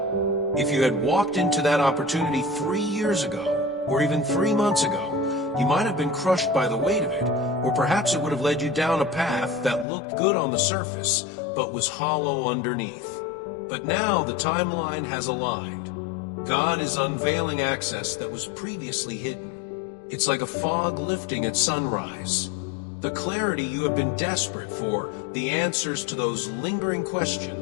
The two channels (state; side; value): drops out; right; at 9.9 s